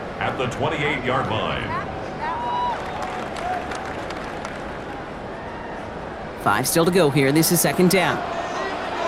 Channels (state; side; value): identical; both; correlation 1.00